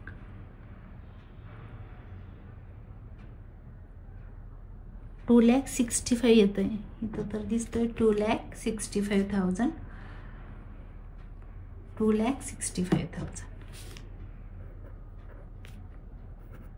$2,65,000 येत आहे इथं तर दिसतोय 2,65,000 2,65,000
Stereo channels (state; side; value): identical; both; correlation 1.00